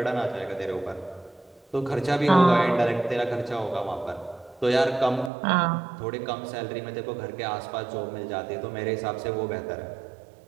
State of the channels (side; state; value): left; drops out; at 5.3 s